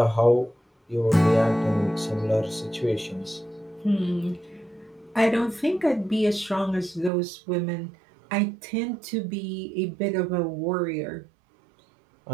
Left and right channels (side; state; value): left; drops out; at 7.1 s